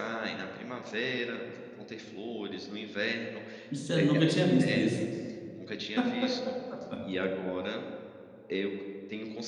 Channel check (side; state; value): both; identical; correlation 1.00